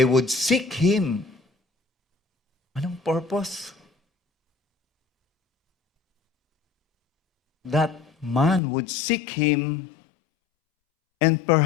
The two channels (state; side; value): drops out; right; at 8.6 s